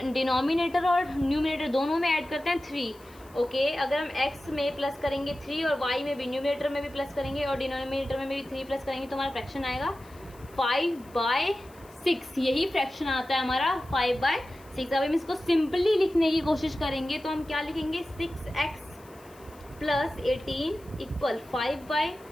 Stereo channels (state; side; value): noise; left; hiss, 26 dB below the sound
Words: डिनोमिनेटर और न्यूमिनेटर दोनों में ऐड करते हैं 3। ओके, अगर हम x में प्लस करेंगे 3 और y में भी, न्यूमिनेटर में भी प्लस करेंगे और डिनोमिनेटर में भी 3 प्लस करेंगे तो हमारा फ्रैक्शन आएगा 5/6। यही फ्रैक्शन आता है हमारा 5/6। अब हम इसको सिंपली लिखने की कोशिश करेंगे तो हम क्या लिखेंगे, 6x + 18 इक्वल 5/,